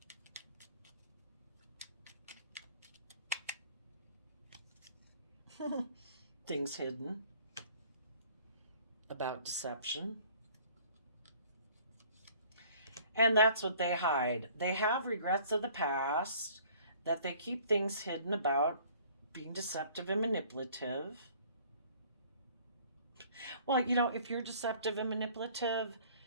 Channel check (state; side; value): inverted; both; correlation -0.54